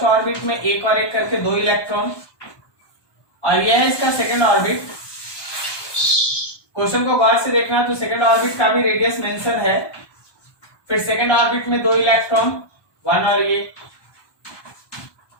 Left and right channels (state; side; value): late; right; 1.2 ms